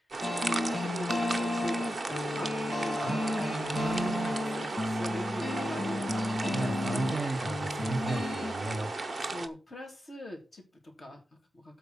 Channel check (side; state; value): both; normal; correlation 0.90